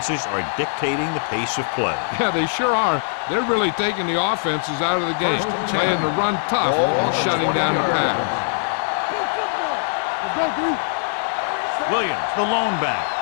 are dictating the pace of play. Yeah, they sure are. They're really taking the offenses out of the game, playing the run tough and shutting down the pass. Play football. Here we go. Williams, the lone back.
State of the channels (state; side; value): silent; right; digital silence